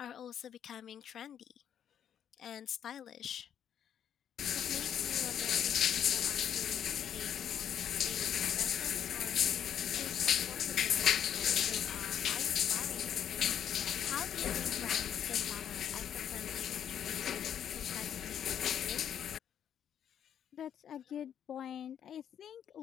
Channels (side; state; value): right; quieter; 9.3 dB